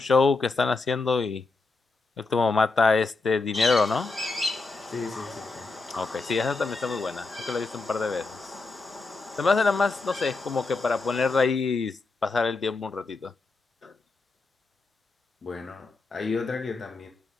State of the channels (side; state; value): right; quieter; 3.8 dB